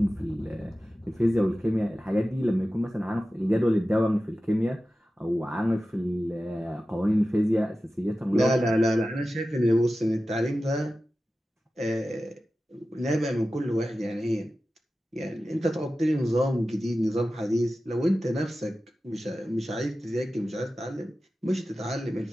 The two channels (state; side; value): normal; both; correlation 0.94